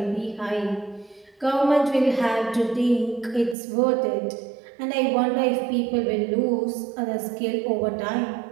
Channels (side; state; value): left; drops out; at 3.6 s